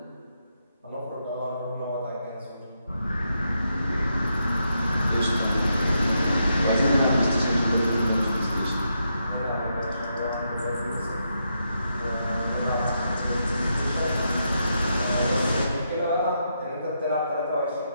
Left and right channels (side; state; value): both; inverted; correlation -0.82